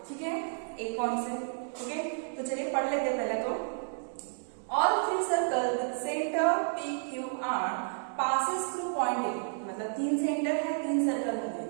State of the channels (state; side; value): silent; left; digital silence